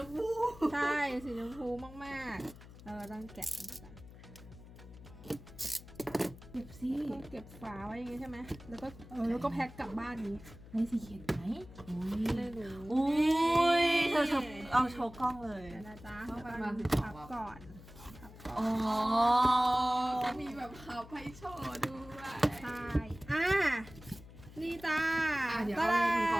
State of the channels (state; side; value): noise; left; hum, 18 dB below the sound